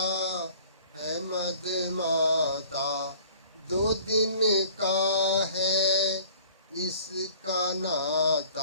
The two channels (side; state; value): both; inverted; correlation -0.51